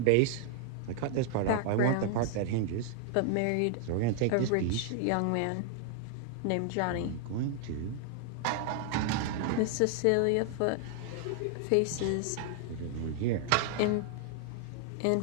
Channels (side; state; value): both; different; correlation 0.00